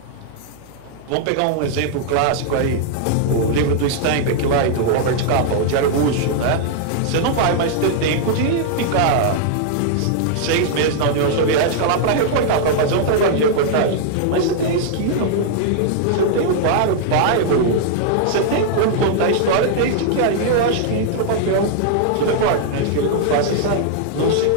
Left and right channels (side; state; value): both; different; correlation -0.01